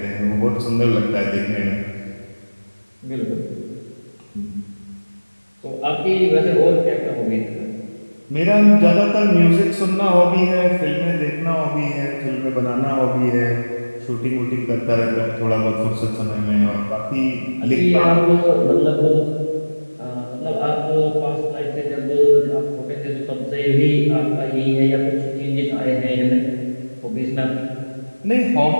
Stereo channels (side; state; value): both; inverted; correlation -1.00